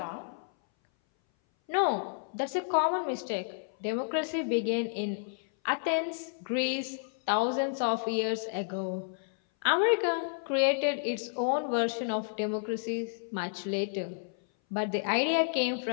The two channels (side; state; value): right; silent; 57 dB below the other